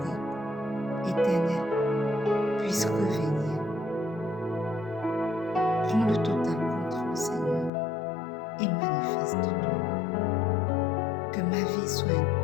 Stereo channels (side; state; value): right; drops out; at 7.7 s